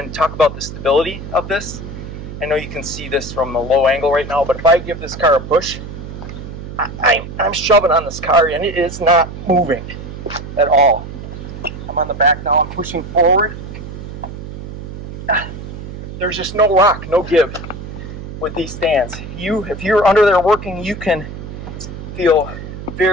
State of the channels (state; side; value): noise; right; hum, 10 dB below the sound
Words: talk about the stability of this. I know you can see this from a low angle right now, but if I give this car a push, I'm shoving on this car and it is not moving at all. I'm on the back now, I'm pushing forward. There's just no rock, no give with these stands. If you're under there working, you can feel